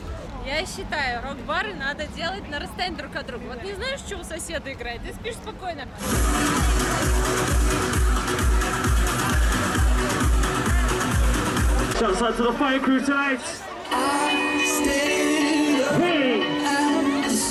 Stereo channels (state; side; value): identical; both; correlation 1.00